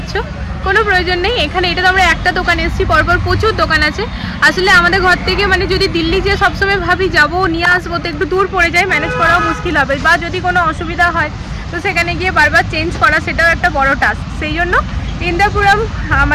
কোনো প্রয়োজন নেই এখানে। এটা তো আমরা একটা দোকানে এসেছি, পরপর প্রচুর দোকান আছে। আসলে আমাদের ঘর থেকে মানে যদি দিল্লি যে সবসময় ভাবি যাবো নিয়ে আসবো, তো একটু দূর পড়ে যায়, ম্যানেজ করাও মুশকিল হবে। বা যদি কোনো অসুবিধা হয় তো সেখানে গিয়ে বারবার চেঞ্জ করা, সেটাও একটা বড় টাস্ক। সেই জন্য ইন্দ্রপুরম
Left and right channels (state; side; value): identical; both; correlation 1.00